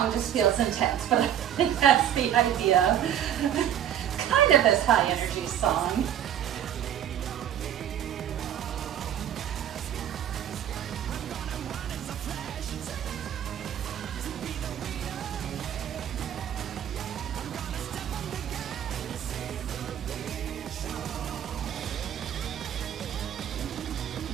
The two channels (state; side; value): quieter; left; 10.3 dB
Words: just feels intense, but I think that's the idea. Kind of this high energy song.